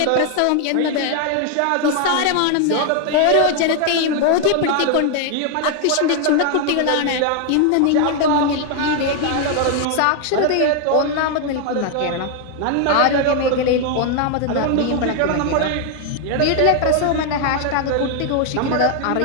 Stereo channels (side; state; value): both; different; correlation 0.00